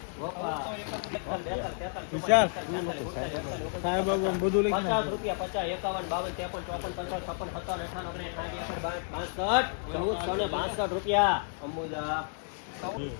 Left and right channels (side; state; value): right; silent; 57 dB below the other